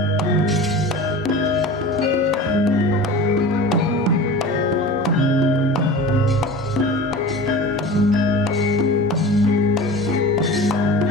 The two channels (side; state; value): both; normal; correlation 0.35